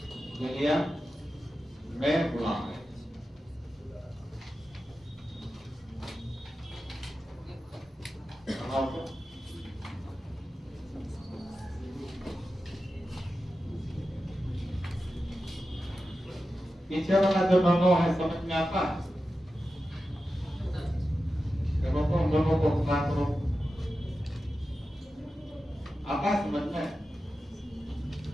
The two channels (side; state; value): both; normal; correlation 0.92